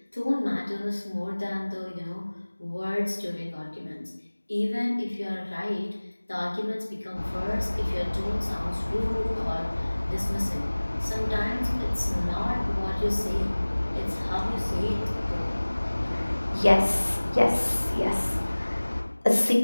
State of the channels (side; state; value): both; inverted; correlation -1.00